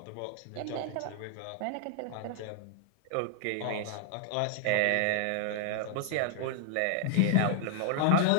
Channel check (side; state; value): both; different; correlation 0.00